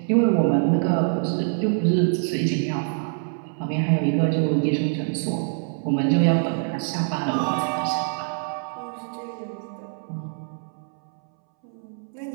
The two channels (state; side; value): silent; left; 62 dB below the other